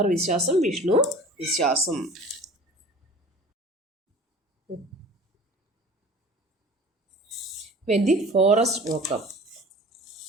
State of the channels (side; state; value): both; normal; correlation 0.43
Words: വിശ്വാസം, വിഷ്ണു വിശ്വാസം. വെൻ ദി ഫോറസ്റ്റ് വോക്കപ്പ്,